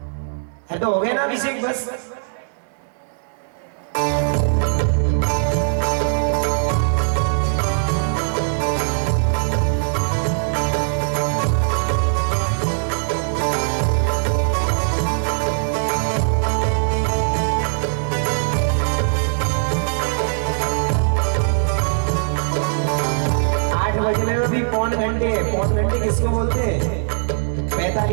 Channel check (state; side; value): silent; left; digital silence